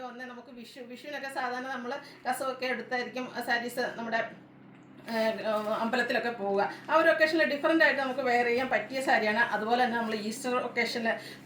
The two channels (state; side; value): identical; both; correlation 1.00